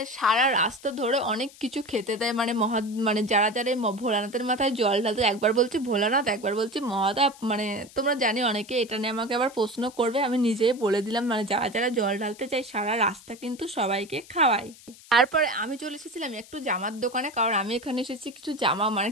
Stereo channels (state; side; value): noise; left; hiss, 21 dB below the sound